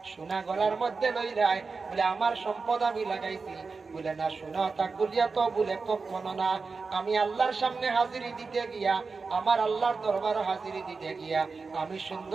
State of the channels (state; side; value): quieter; left; 4.5 dB